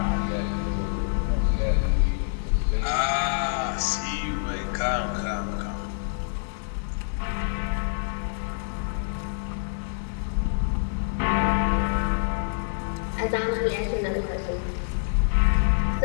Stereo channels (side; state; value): right; silent; 61 dB below the other